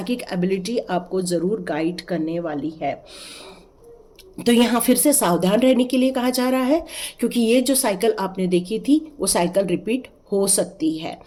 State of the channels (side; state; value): both; identical; correlation 1.00